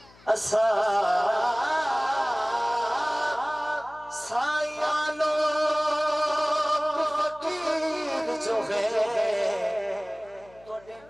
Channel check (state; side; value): noise; left; hum, 26 dB below the sound